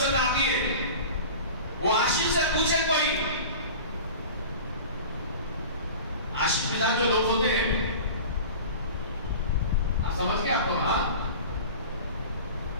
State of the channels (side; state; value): both; inverted; correlation -0.37